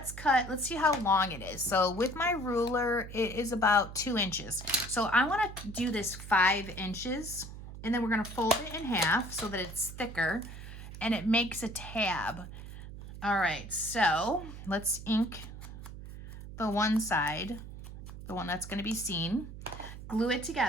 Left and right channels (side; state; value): right; noise; hum, 12 dB below the sound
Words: see how long it is. So with my ruler, it is about 2 inches. So I want to do this 5 inches, and then we're going to fold it in half so that it's thicker and it makes a tab. All right, so let's ink the one side, the one that's going to be seen, glue it